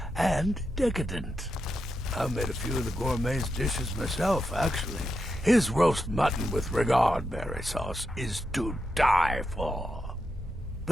and decadent. I made a few of the gourmet's dishes myself, actually. His roast mutton with regard berry sauce is to die for.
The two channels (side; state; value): both; normal; correlation 0.86